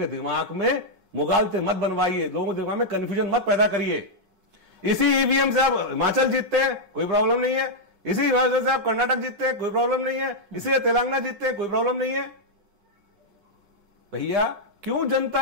दिमाग में मुगालते मत बनवाइए, लोगों के दिमाग में कंफ्यूजन मत पैदा करिए। इसी ईवीएम से आप हिमाचल जीतते हैं, कोई प्रॉब्लम नहीं है। इसी हिमाचल से आप कर्नाटक जीतते हैं, कोई प्रॉब्लम नहीं है। इसी से तेलंगाना जीतते हैं, कोई प्रॉब्लम नहीं है। भैया क्यों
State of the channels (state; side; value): late; left; 5.4 ms